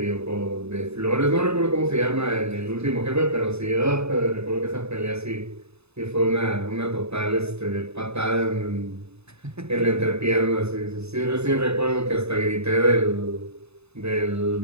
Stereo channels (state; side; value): late; left; 0.80 ms